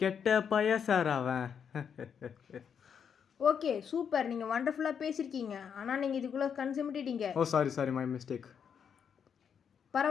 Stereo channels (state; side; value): quieter; right; 7.4 dB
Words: பைய சார் அவன். ஓகே சூப்பர், நீங்கள் வண்டர்ஃபுல்லாக பேசியிருக்கீங்க. ஆனால் நீங்கள் இதுக்குள்ளே கன்சிமிட்டிட்டீங்க. ஓ சாரி சாரி, மை மிஸ்டேக்.